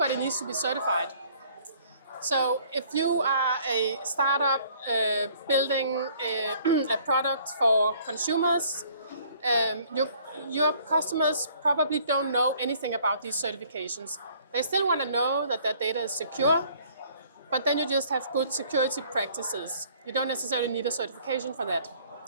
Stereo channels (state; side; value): inverted; both; correlation -0.58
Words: needs to be certified. So if you are a startup building a product for consumers, your customers probably don't know anything about these certifications. They still want to know that their data is secure, but then you just have good security practices. You don't necessarily need a certification for that.